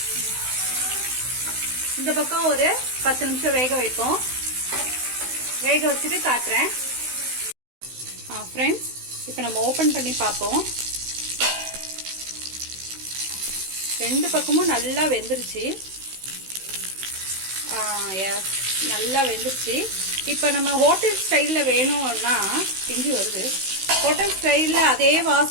இந்த பக்கம் ஒரு 10 நிமிஷம் வேக வைப்போம். வேக வச்சுட்டு காட்டுறேன். ஃப்ரெண்ட்ஸ், இப்போ நம்ம ஓபன் பண்ணி பார்ப்போம். ரெண்டு பக்கமும் நல்லா வெந்துருச்சு. எஸ், நல்லா வெந்துருச்சு. இப்போ நம்ம ஹோட்டல் ஸ்டைலில் வேணும்னா பிஞ்சு வருது. ஹோட்டல் ஸ்டைலில் அதே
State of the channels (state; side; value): late; left; 16 ms